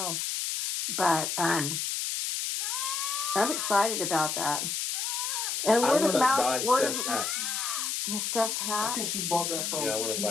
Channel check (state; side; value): noise; left; hiss, 1 dB below the sound